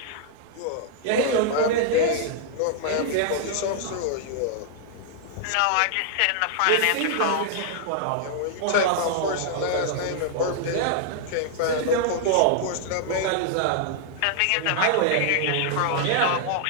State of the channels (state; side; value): different; both; correlation -0.01